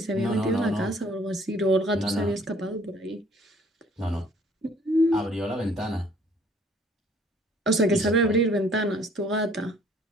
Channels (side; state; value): both; normal; correlation 0.58